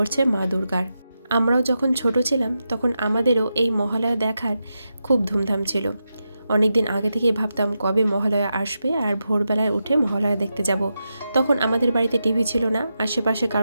মা দুর্গার। আমরাও যখন ছোট ছিলাম তখন আমাদেরও এই মহালয়া দেখার খুব ধুমধাম ছিল। অনেক দিন আগে থেকেই ভাবতাম কবে মহালয়া আসবে আর ভোরবেলায় উঠে মহালয়া দেখতে যাব। তখন আমাদের বাড়িতে টিভি ছিল না, আশেপাশে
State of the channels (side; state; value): both; inverted; correlation -0.88